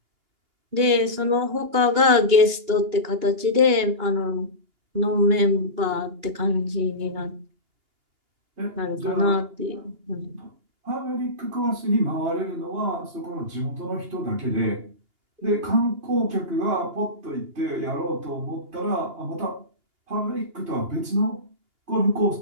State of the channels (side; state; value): left; late; 2.8 ms